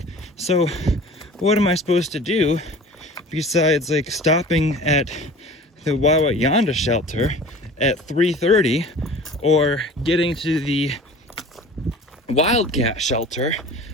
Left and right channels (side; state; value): both; normal; correlation 0.42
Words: So what am I supposed to do besides like stopping at the Yonda shelter at 3:30 or getting to the Wildcat shelter